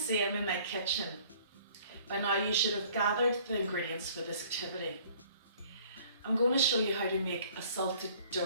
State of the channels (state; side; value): inverted; both; correlation -0.55